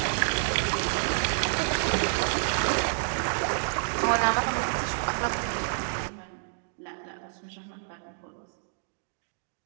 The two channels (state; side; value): silent; left; digital silence